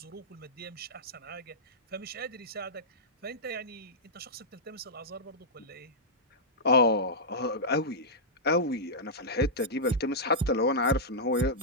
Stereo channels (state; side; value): normal; both; correlation -0.12